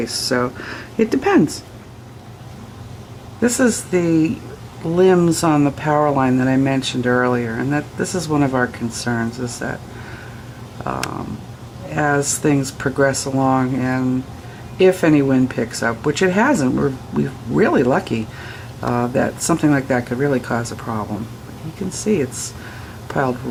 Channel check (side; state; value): both; identical; correlation 1.00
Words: so it depends. This is the limbs on the power line that I mentioned earlier, and this is one of our concerns, is that as things progress along, and if any wind picks up, which it hasn't, we're really lucky that something like that could really cause a problem. You can see it's piled